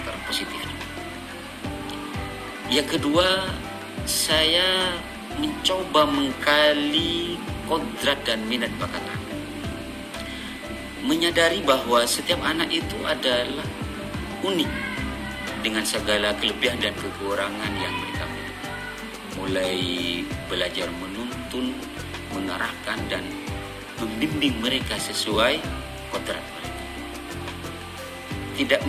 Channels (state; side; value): identical; both; correlation 1.00